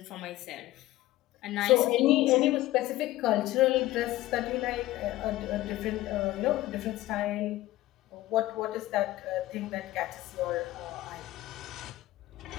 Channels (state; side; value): quieter; right; 16.4 dB